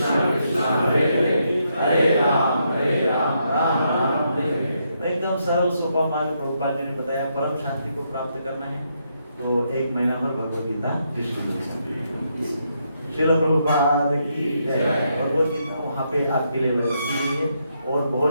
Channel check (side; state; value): both; inverted; correlation -0.78